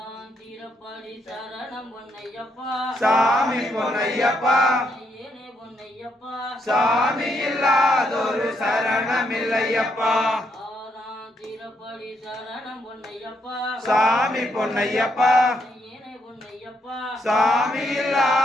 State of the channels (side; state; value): both; normal; correlation 0.77